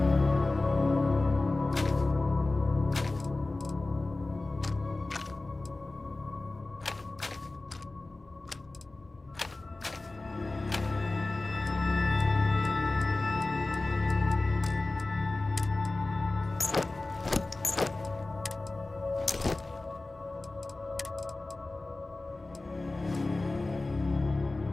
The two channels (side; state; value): right; quieter; 3.1 dB